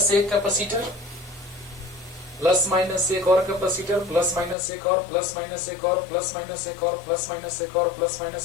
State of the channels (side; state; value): right; drops out; at 4.5 s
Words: एक कैपेसिटर, प्लस माइनस एक और कैपेसिटर, प्लस माइनस एक और, प्लस माइनस एक और, प्लस माइनस एक और, प्लस माइनस एक और, प्लस